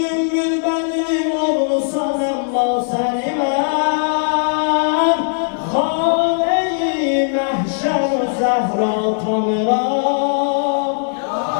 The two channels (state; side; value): silent; right; digital silence